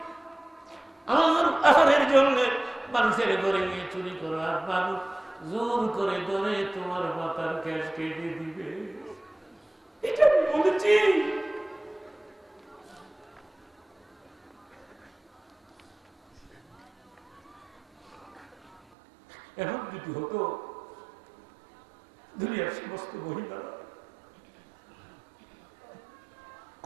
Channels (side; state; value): left; drops out; at 18.8 s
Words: আমার আহারের জন্য মানুষের ঘরে গিয়ে চুরি করো, আর মানুষ জোর করে ধরে তোমার মাথার ক্যাশ কেটে দিবে? এটা আমি বলেছি? এখন যদি হতো দুনিয়ার সমস্ত মহিলারা